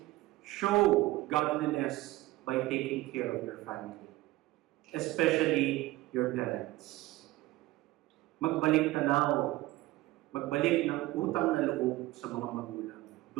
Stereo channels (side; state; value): left; quieter; 18.4 dB